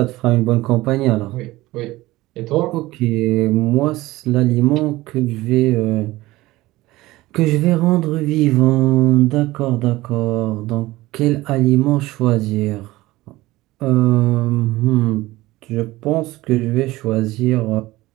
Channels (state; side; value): quieter; left; 18.5 dB